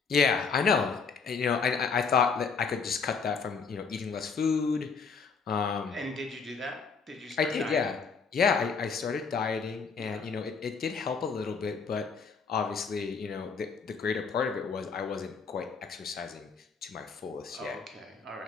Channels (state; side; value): quieter; right; 5.3 dB